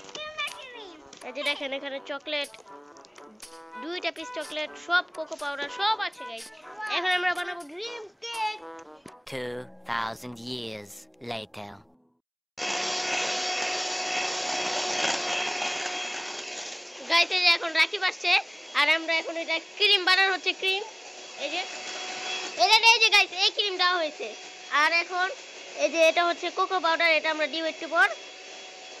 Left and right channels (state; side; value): identical; both; correlation 1.00